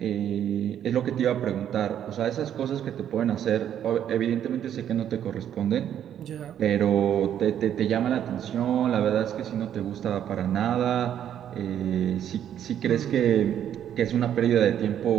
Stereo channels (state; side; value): quieter; left; 10.0 dB